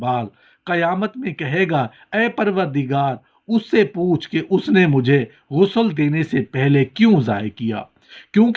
قیامت میں کہے گا، اے پروردگار، اس سے پوچھ کہ اس نے مجھے غسل دینے سے پہلے کیوں ضائع کیا،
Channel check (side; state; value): both; identical; correlation 1.00